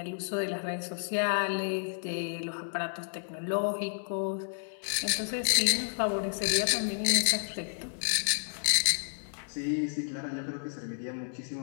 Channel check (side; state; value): right; silent; digital silence